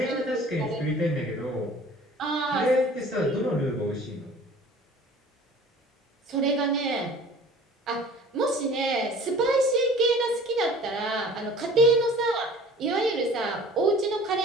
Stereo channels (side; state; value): both; normal; correlation 0.47